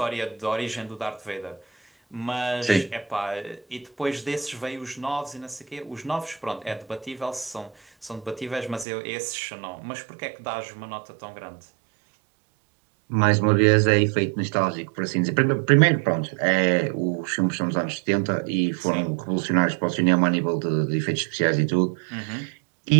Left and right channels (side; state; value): left; drops out; at 8.8 s